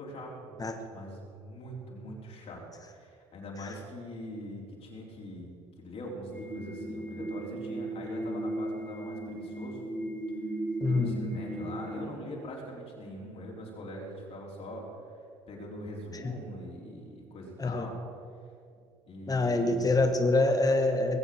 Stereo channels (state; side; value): normal; both; correlation 0.72